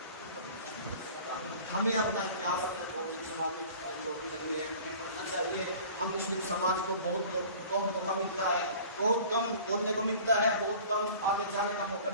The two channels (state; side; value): inverted; both; correlation -0.44